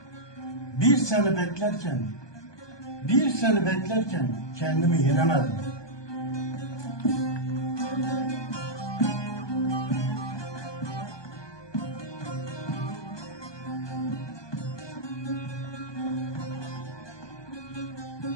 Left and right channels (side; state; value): right; late; 1.2 ms